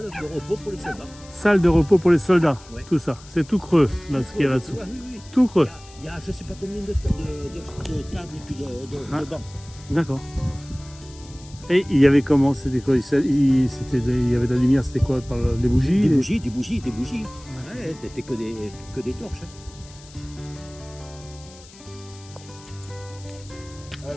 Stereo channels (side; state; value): left; noise; hiss, 22 dB below the sound